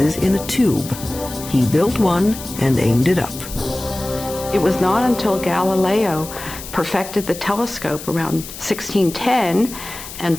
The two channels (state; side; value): noise; left; hiss, 12 dB below the sound